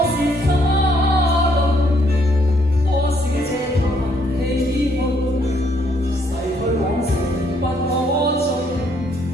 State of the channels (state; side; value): normal; both; correlation 0.69